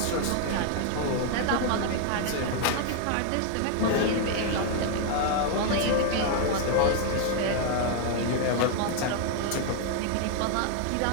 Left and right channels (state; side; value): different; both; correlation 0.00